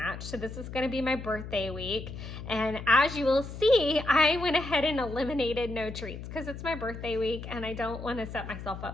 so this is going to be my birthday week. And as you will see, I went ahead and eliminated no treats because it's my birthday week and I don't want to set myself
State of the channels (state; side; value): noise; left; hum, 10 dB below the sound